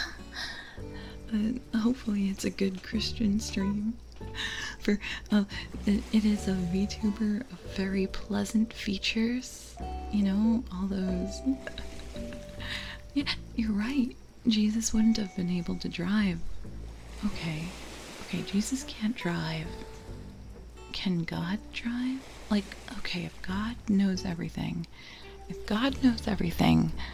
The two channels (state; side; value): identical; both; correlation 1.00